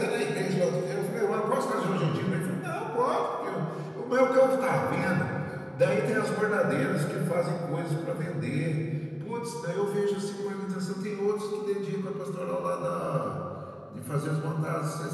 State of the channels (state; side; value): identical; both; correlation 1.00